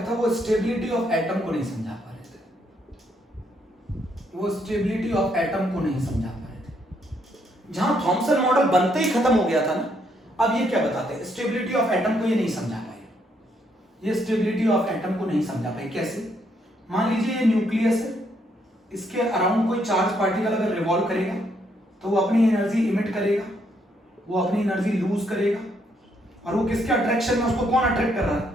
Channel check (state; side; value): normal; both; correlation 0.73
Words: था वो स्टेबिलिटी ऑफ एटम को नहीं समझा पा रहे थे, वो स्टेबिलिटी ऑफ एटम को नहीं समझा पा रहे थे। जहां थॉमसन मॉडल बनते ही खत्म हो गया था ना, अब ये क्या बताते हैं? स्टेबिलिटी ऑफ एटम को ये नहीं समझा पाए, ये स्टेबिलिटी ऑफ एटम को नहीं समझा पाए। कैसे? मान लीजिए ये न्यूक्लियस है, इसके अराउंड कोई चार्ज पार्टिकल अगर रिवॉल्व करेगा तो वो अपनी एनर्जी इमिट करेगा, वो अपनी एनर्जी लूज करेगा, और वो किसके अट्रैक्शन में, उसको कौन अट्रैक्ट कर रहा है?